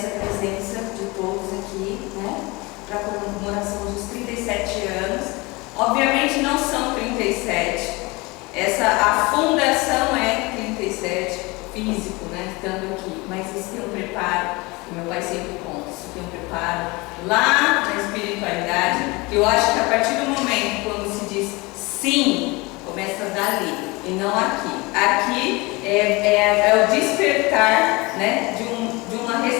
a presença de todos aqui, para a comemoração dos 37 anos. Obviamente não são 37, a fundação é 37, físico, estando aqui, mas isso tem um preparo, que meu pai sempre conta, isso tem um preparo lá na espiritualidade, que eu acho que a partir do momento quando se diz sim, começa dali, e não aqui. Aqui é o despertar, de uma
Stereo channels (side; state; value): right; quieter; 24.6 dB